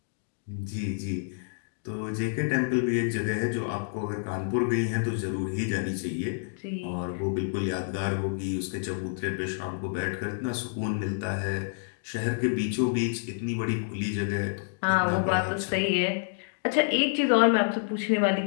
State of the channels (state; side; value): silent; right; digital silence